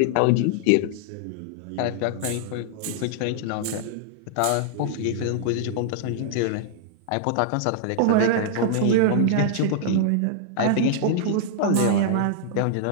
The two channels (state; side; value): different; both; correlation -0.01